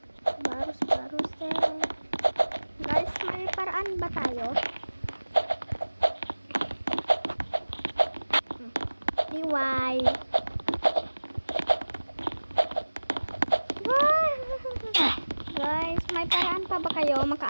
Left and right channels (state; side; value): inverted; both; correlation -1.00